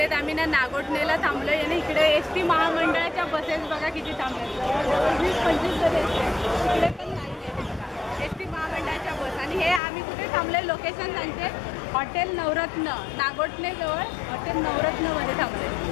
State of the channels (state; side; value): drops out; right; at 9.8 s